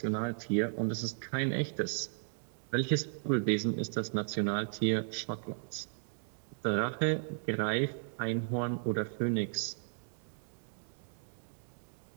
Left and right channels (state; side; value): silent; left; digital silence